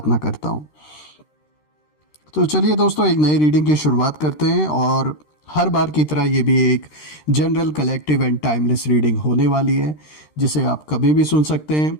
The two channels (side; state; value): right; late; 13 ms